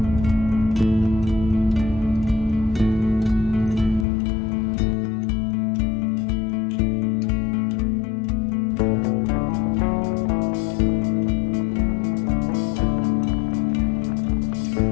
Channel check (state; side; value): drops out; right; at 4.0 s